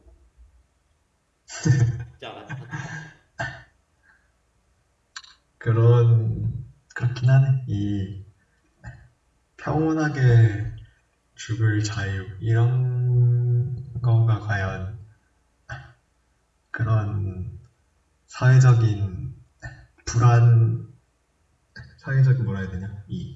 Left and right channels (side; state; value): both; identical; correlation 1.00